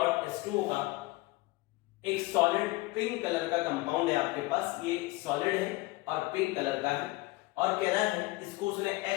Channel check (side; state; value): right; quieter; 21.1 dB